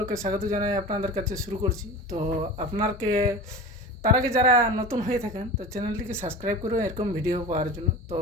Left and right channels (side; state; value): both; normal; correlation 0.33